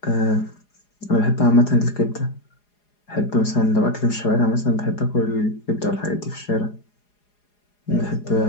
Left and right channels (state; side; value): late; right; 4.9 ms